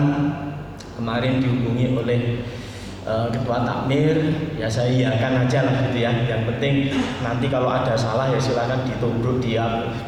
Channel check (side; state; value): both; identical; correlation 1.00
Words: kemarin dihubungi oleh ketua takmir, ya saya iakan aja lah gitu ya. Yang penting nanti kalau ada salah ya silakan ditubruk, dia